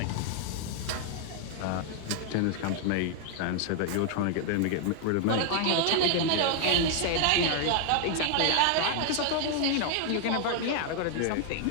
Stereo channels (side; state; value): both; different; correlation 0.00